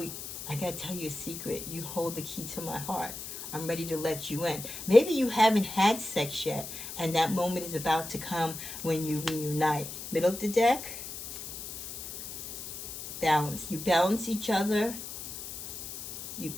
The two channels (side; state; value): left; noise; hiss, 9 dB below the sound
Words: I got to tell you a secret. You hold the key to my heart. I'm ready to let you in. Maybe you haven't had sex yet, and that moment is about to come when you reunite. Middle of the deck. Balance. You balance each other. You